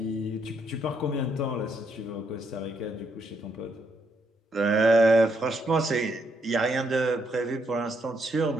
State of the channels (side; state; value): both; normal; correlation 0.75